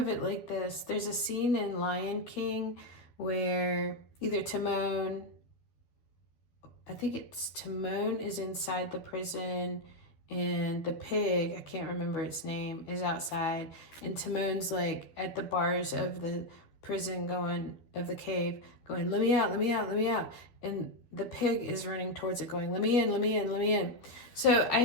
it like this. There's a scene in Lion King where either Timon is inside the prison, and the pig, I can't remember its name, is outside, and Timon's like at the bars of the prison of the cave going, let me out, let me out, let me out. And the pig is running towards it going, let me in, let me in, let me in. So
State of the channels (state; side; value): late; right; 12 ms